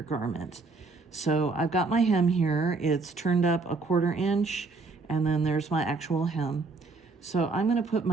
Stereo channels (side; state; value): left; quieter; 4.0 dB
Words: garment. So I've got my hem here. It's turned up 1/4 inch, and then there's my actual hem. So I'm going to put